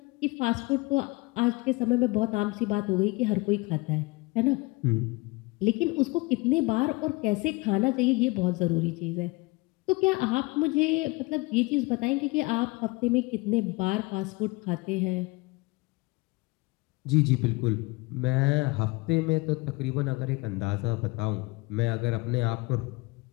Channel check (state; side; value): quieter; right; 24.6 dB